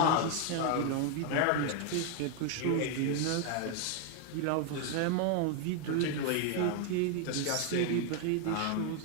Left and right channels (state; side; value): different; both; correlation 0.01